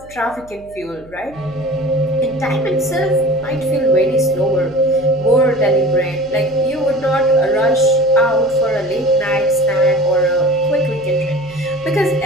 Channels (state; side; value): noise; right; hum, 23 dB below the sound